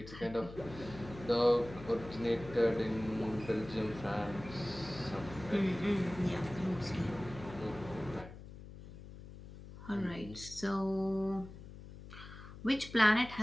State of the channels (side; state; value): left; noise; hum, 15 dB below the sound